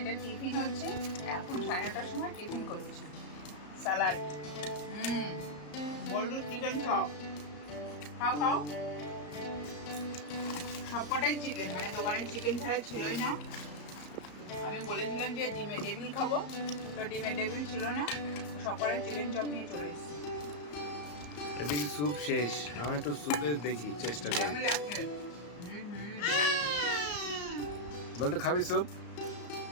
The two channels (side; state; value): right; late; 34 ms